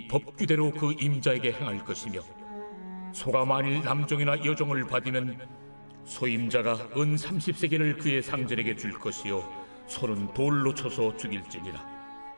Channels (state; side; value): inverted; both; correlation -1.00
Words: 법규대로 그 임자에게 행할 것이며 소가 만일 남종이나 여종을 받으면 소임자가 은 30세겔을 그의 상전에게 줄 것이요 소는 돌로 쳐서 죽일지니라.